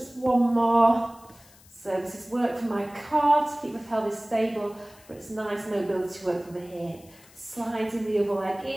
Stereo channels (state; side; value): noise; left; hiss, 25 dB below the sound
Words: one more. So this is work for my core to keep the pelvis stable, but it's nice mobility work for the hip. Sliding the other leg